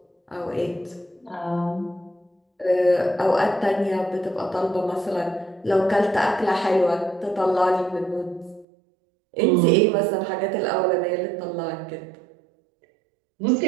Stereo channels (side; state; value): left; drops out; at 8.7 s